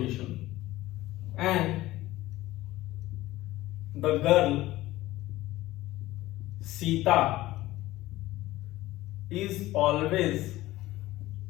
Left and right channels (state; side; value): quieter; right; 16.9 dB